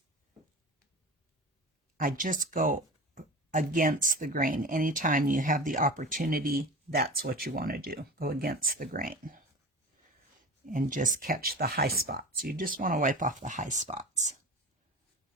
I just go against the grain. Anytime you have the opportunity, that's what you want to do. Go against the grain. and just catch the high spots. You just want to wipe off the high spots.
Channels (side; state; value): both; normal; correlation 0.33